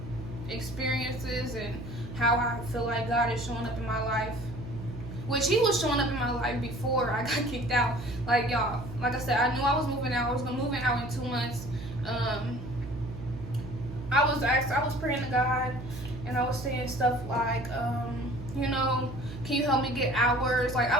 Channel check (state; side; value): noise; right; hum, 11 dB below the sound